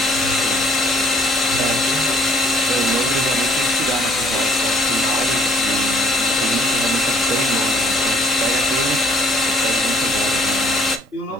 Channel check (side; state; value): both; normal; correlation 0.62